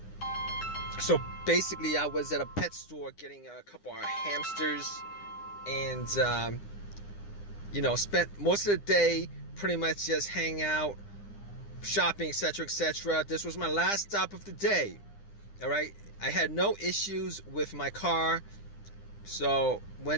So basically I was at a pet store getting a couple of hamsters and spent most of the day pretty much just hanging out, shopping, etc., etc. This was my last stop of the day. All right, I had no issues with my car, so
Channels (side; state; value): right; late; 9.9 ms